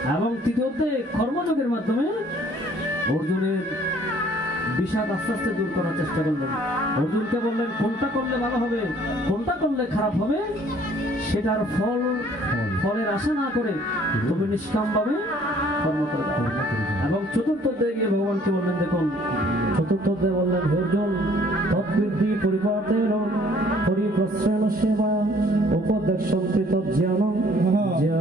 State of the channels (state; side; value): normal; both; correlation 0.58